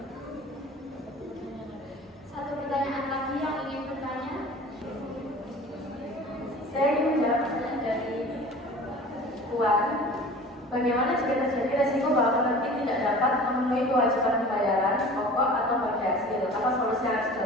Satu pertanyaan lagi yang ingin bertanya. Saya ingin menjawab pertanyaan dari Puan. Bagaimana jika terjadi resiko bahwa penerbit tidak dapat memenuhi kewajiban pembayaran pokok atau bagi hasil? Apa solusi yang harus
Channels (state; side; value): normal; both; correlation 0.42